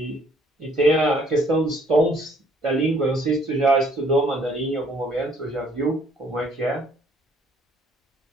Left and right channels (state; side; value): normal; both; correlation 0.63